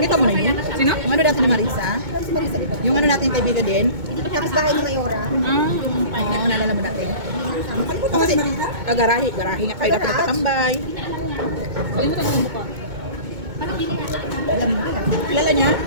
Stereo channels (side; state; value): left; late; 2.2 ms